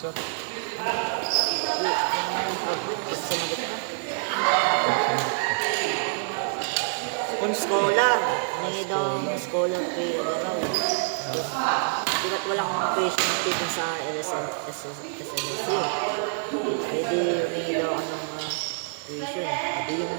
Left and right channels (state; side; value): silent; left; 61 dB below the other